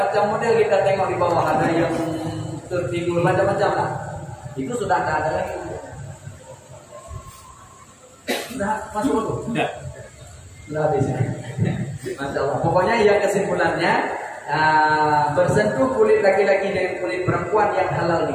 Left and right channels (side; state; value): both; identical; correlation 1.00